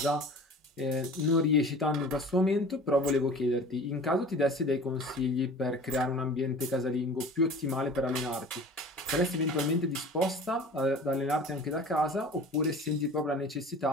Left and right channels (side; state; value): both; normal; correlation 0.41